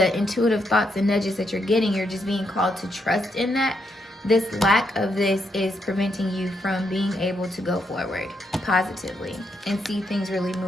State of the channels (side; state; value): both; normal; correlation 0.78